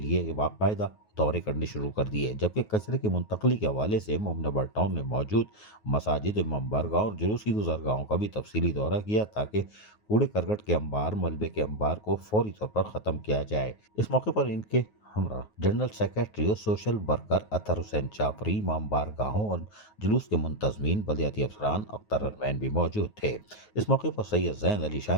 बाकायदा दौरे करने शुरू कर दिए। जबकि कचरे की मुंतकली के हवाले से मोमिनाबाद टाउन में मौजूद मसाजिद, इमाम बारगाह और जुलूस की गुजरगाहों का भी तफसीली दौरा किया ताकि कूड़े करकट के अंबार, मलबे के अंबार को फौरी तौर पर ख़त्म किया जाए। इस मौके पर इनके हमरा जनरल सेक्रेटरी और सोशल वर्कर अतर हुसैन चापरी, इमाम बारगाहों और जुलूस के मुंतजमीन, बल्दियाती अफसरान, अख्तर अरमैन भी मौजूद थे। इस मौके पर सैयद ज़ैन अली शाह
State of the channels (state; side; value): late; right; 9.4 ms